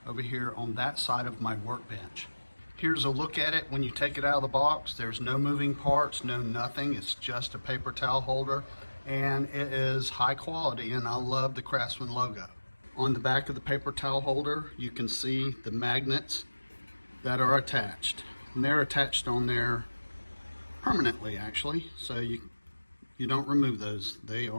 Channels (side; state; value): both; inverted; correlation -1.00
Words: over here on that side of my workbench. Here's a look at it when you take it out of the box. There's no moving parts, no nothing. It's just a paper towel holder, and it is high quality, and I love the Craftsman logo. On the back of the paper towel holder, you can see the magnets that are attached. And they're attached on there permanently, actually, so you don't remove those. They